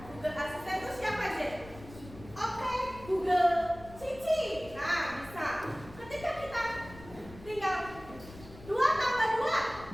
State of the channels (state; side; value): noise; left; rumble, 17 dB below the sound